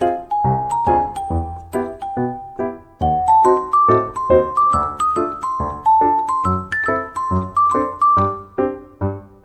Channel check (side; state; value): both; identical; correlation 1.00